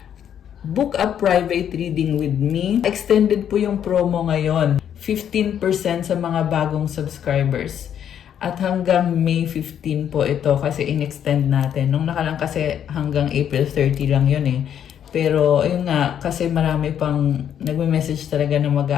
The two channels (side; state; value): right; quieter; 9.3 dB